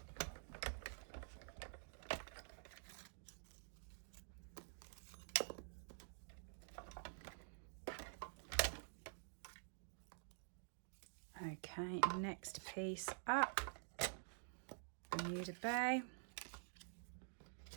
Okay, next piece up, Bermuda Bay,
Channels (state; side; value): silent; left; digital silence